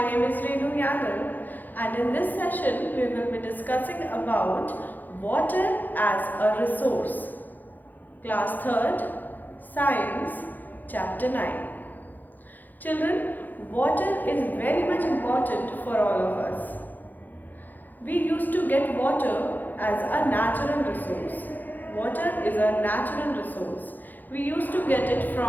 is Renu Yadav and in this session we will be discussing about water as a resource. Class 3rd, Science, Chapter 9. Children, water is very much important for all of us. We used to get water as a natural resource. Water is a natural resource. We used to get it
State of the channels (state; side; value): late; right; 0.085 ms